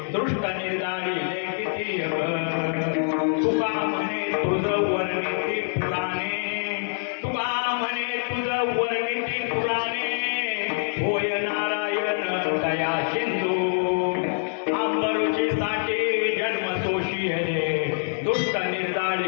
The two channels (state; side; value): silent; right; 62 dB below the other